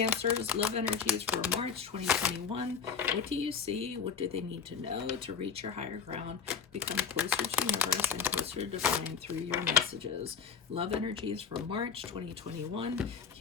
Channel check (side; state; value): right; quieter; 6.5 dB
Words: love energies for March 2021. What do you see? What do they need to know to reach your higher ground, become closer to universe and closer to divine through your messages? Love energies for March 2021.